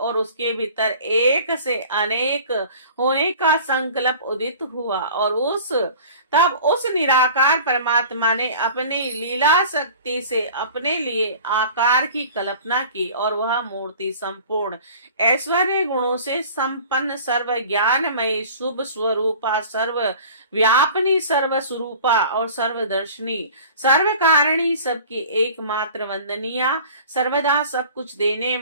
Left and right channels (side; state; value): both; inverted; correlation -0.44